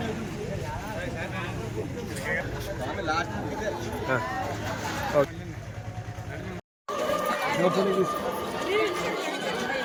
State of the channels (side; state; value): both; identical; correlation 1.00